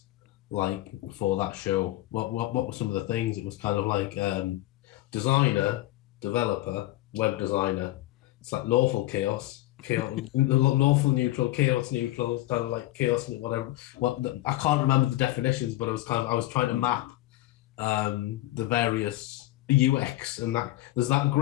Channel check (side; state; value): right; quieter; 16.6 dB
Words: like for that show. What were some of the things? It was kind of like designer, developer, web designer. It's like lawful chaos, lawful neutral, chaos neutral, kind of like chaos, whatever. I can't remember the definitions, but I was trying to map the various UX, and that there's that